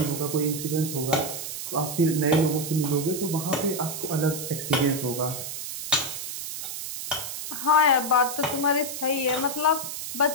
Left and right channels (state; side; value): noise; right; hiss, 7 dB below the sound